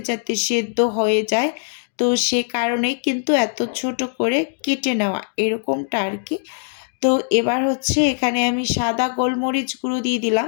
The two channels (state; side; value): silent; right; digital silence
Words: যাতে সেদ্ধ হয়ে যায়। তো সে কারণেই কিন্তু এত ছোট করে কেটে নেওয়া, এরকমটা আর কি। তো এবার হচ্ছে এখানে আমি সাদা গোলমরিচ গুঁড়ো দিয়ে